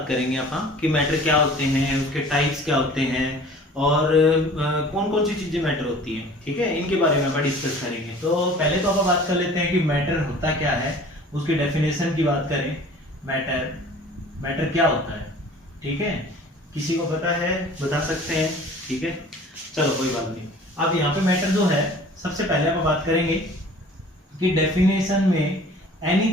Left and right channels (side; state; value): both; normal; correlation 0.47